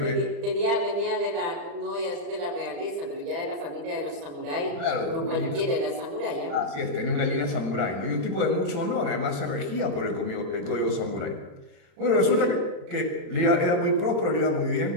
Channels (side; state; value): left; late; 35 ms